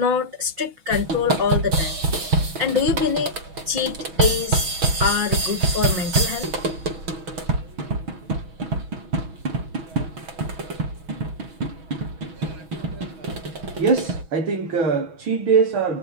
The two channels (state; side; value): late; left; 6.3 ms